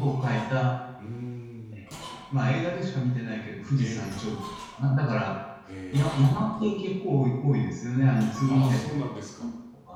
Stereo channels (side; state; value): both; identical; correlation 1.00